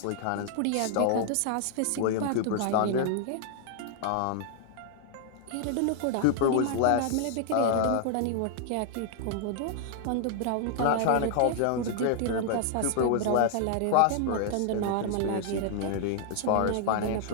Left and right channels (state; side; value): different; both; correlation 0.00